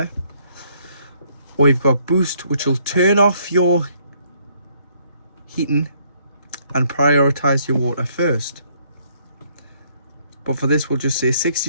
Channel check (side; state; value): both; inverted; correlation -0.67